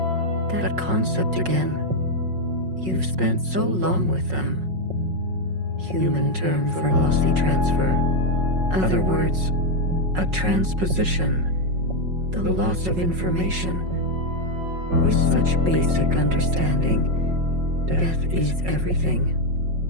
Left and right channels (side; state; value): left; late; 5.5 ms